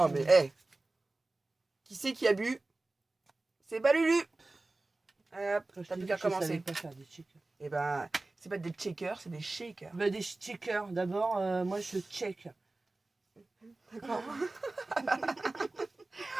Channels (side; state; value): left; quieter; 3.1 dB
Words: mais, hé. Qui c'est qui a bu? C'est pas Lulu. Hop, Quand je t'as t'ai plus dit qu'à que je savais commencer. pas faire des checkers. Et ben, c'est pas des checkers, c'est des shakers. Bah, des checkers. D'abord, moi, je check. D'accord.